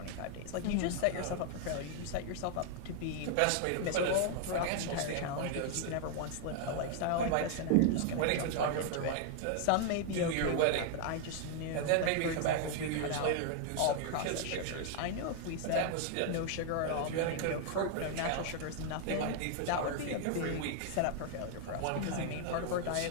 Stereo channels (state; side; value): different; both; correlation 0.00